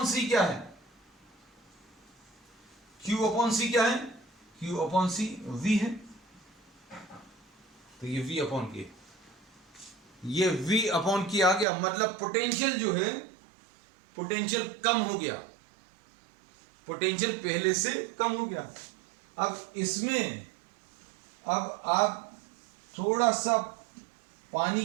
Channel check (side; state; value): left; drops out; at 11.7 s